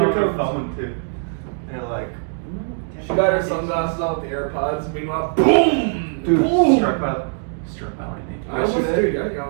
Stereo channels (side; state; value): left; silent; 59 dB below the other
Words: comes. phone too. They're like, She got her sunglasses on with the AirPods. Meanwhile, boom! Dude, boom! struck by lightning. I almost did.